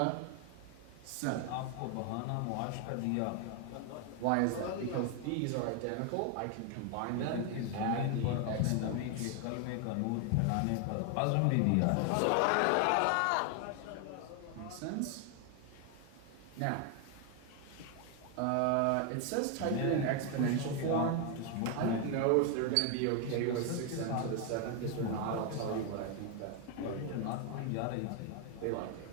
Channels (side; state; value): both; different; correlation 0.01